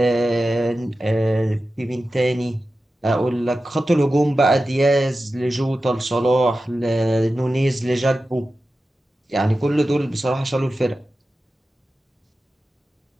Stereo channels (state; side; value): normal; both; correlation 0.94